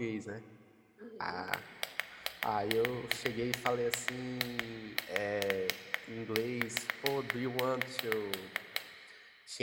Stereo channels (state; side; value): identical; both; correlation 1.00